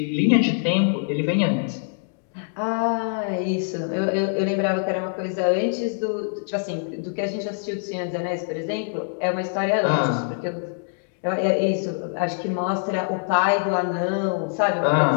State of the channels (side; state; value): right; silent; 63 dB below the other